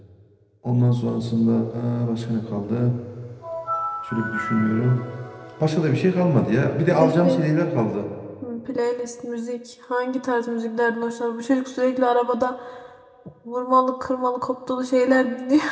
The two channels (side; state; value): both; identical; correlation 1.00